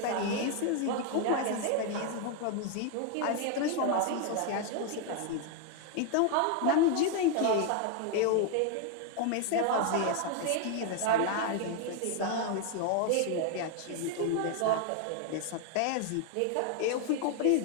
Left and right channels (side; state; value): both; different; correlation 0.00